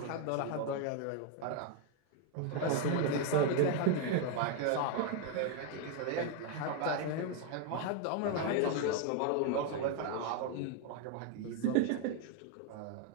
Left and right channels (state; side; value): different; both; correlation 0.01